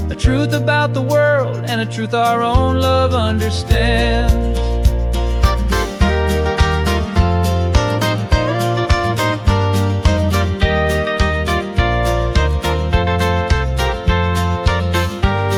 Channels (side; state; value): both; identical; correlation 1.00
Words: a truth about the world and a truth our own love understands.